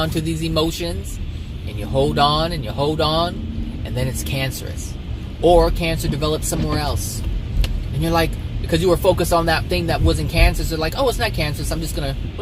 to these emotions, and you hold on, and you hold on, and then it's cancerous. Or cancer develops somewhere else. And you're like, because you were focused on that thing that wasn't cancerous, you're like, oh, it's not cancerous, I'm just gonna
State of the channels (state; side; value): identical; both; correlation 1.00